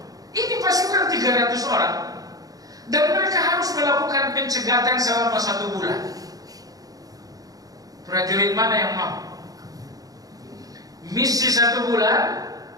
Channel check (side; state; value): left; late; 0.18 ms